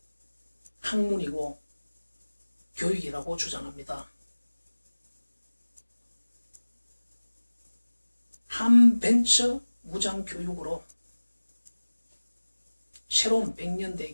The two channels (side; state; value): both; inverted; correlation -1.00